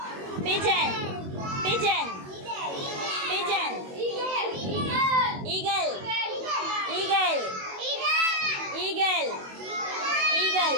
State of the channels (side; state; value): left; late; 21 ms